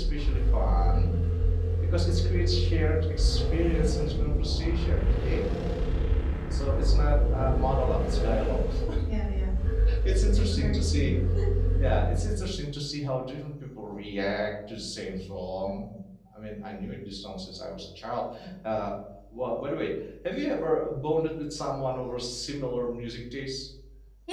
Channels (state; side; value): identical; both; correlation 1.00